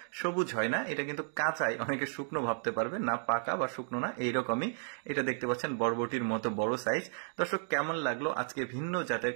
সবুজ হয় না, এটা কিন্তু কাঁচাই, অনেকে শুকনো ভাবতে পারবে না, পাকা বা শুকনো না, এইরকমই। এটা দেখতে পাচ্ছেন বরবটির মতো বড় সাইজ। দর্শক, কেমন লাগলো আজকে ভিন্ন জাতের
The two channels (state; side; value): silent; left; 56 dB below the other